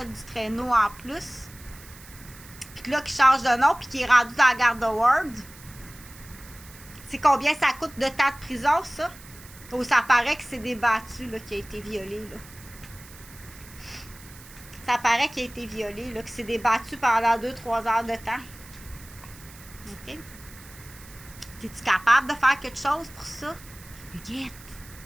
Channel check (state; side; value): noise; right; hiss, 20 dB below the sound